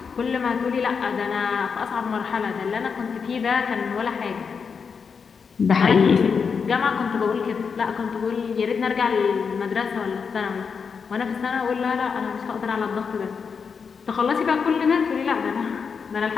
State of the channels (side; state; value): right; quieter; 5.9 dB